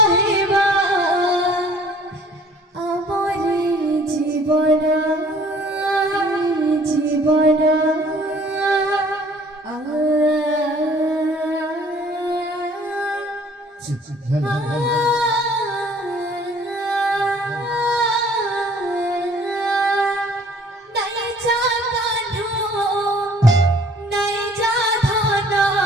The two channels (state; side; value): normal; both; correlation 0.55